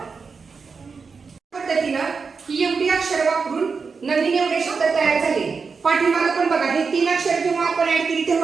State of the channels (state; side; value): quieter; left; 5.1 dB